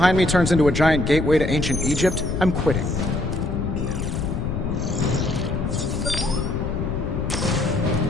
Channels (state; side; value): noise; left; rumble, 2 dB below the sound